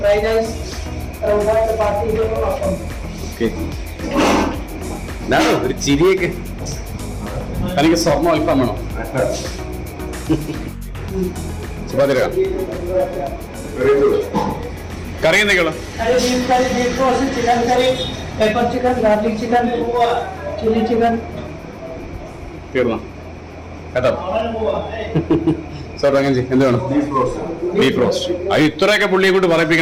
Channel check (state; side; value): identical; both; correlation 1.00